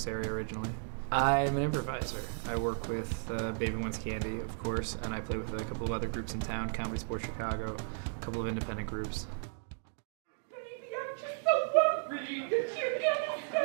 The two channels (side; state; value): left; silent; digital silence